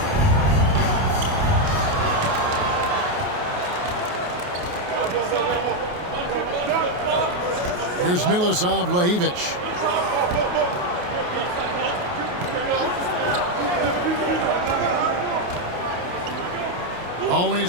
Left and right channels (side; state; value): left; late; 28 ms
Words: Here's Milosav Lajevic.